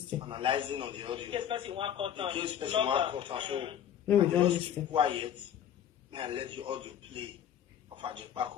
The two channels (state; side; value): quieter; right; 9.8 dB